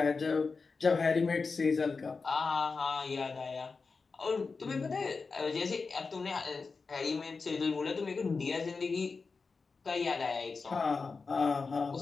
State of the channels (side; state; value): right; quieter; 4.5 dB